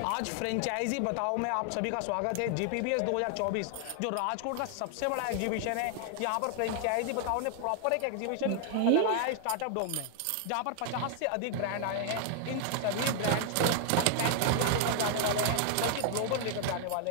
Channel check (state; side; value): different; both; correlation 0.00